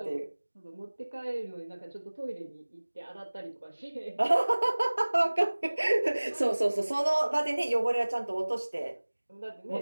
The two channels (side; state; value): both; inverted; correlation -1.00